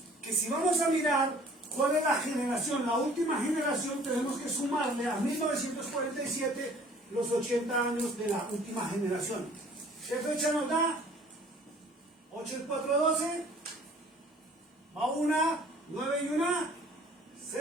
Que si vamos a mirar cuál es la generación, la última generación, tenemos que sumarle a 1947 los 80 años de la última generación. ¿Qué fecha nos da? 8 y 4, 12. Va 1, 9 y 1,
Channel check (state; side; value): normal; both; correlation 0.53